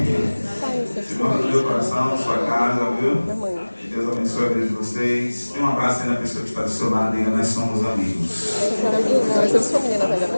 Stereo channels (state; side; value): inverted; both; correlation -1.00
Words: Senhor, no meu coração, na sua casa, viu? Deus abençoe a vida de vocês. Tem um abraço aí na pessoa que está do seu lado, diga, nós somos amigos. Nós somos família, na verdade.